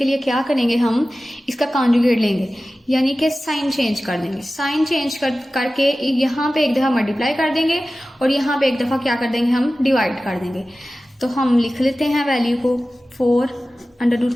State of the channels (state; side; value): normal; both; correlation 0.96